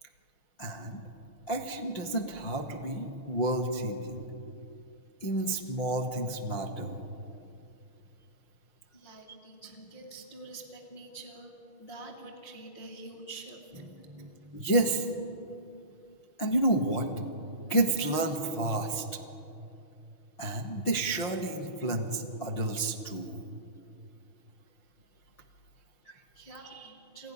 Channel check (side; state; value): right; late; 6.3 ms